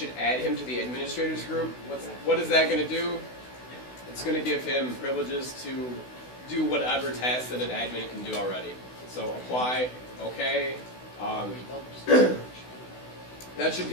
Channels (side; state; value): right; late; 16 ms